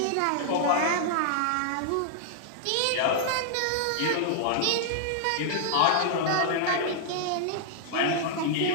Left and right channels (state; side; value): different; both; correlation -0.01